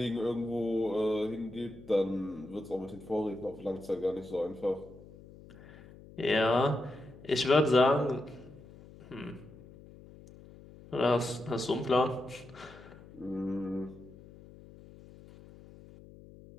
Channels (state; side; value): noise; left; hum, 19 dB below the sound